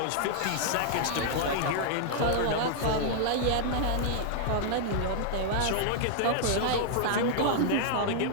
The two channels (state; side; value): different; both; correlation -0.01